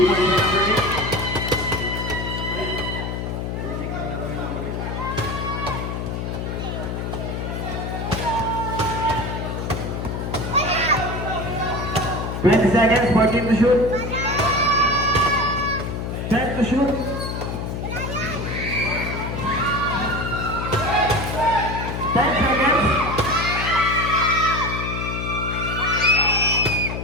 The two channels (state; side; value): noise; left; hum, 4 dB below the sound